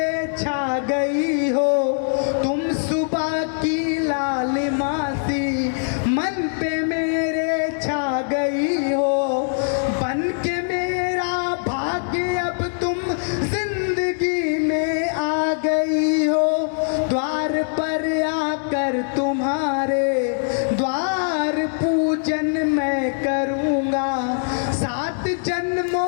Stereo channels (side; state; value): right; silent; digital silence